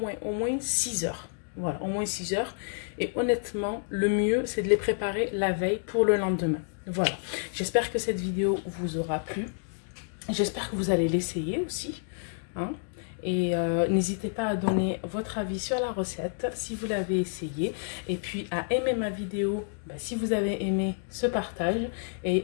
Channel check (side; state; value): right; silent; digital silence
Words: 6 heures. Voilà, au moins 6 heures. Et honnêtement, le mieux, c'est de les préparer la veille pour le lendemain. Voilà. J'espère que cette vidéo vous aura plu. J'espère que vous allez l'essayer aussi. Hein. Et n'hésitez pas à donner votre avis sur la recette si vous l'avez essayé. Et puis à aimer ma vidéo si vous avez aimé ce partage.